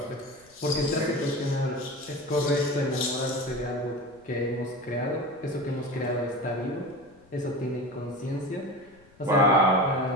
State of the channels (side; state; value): left; noise; rumble, 30 dB below the sound